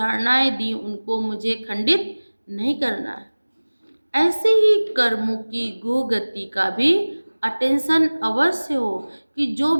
दी, उनको मुझे खंडित नहीं करना है। ऐसे ही कर्मों की गति का भी अटेंशन अवश्य हो कि जो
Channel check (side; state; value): both; inverted; correlation -1.00